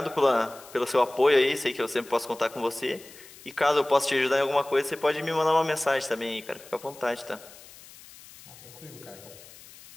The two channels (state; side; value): noise; left; hiss, 20 dB below the sound